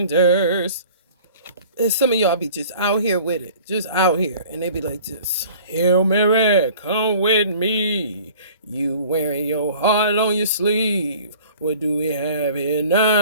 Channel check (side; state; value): both; inverted; correlation -0.48